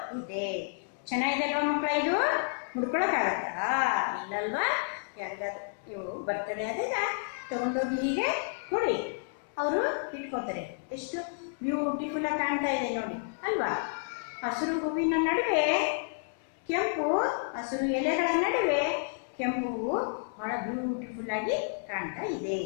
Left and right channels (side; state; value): right; silent; digital silence